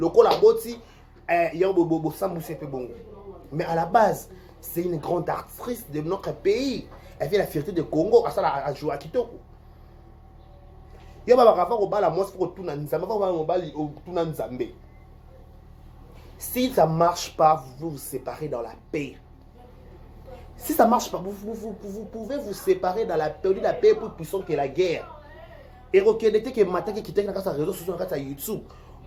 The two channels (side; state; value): both; identical; correlation 1.00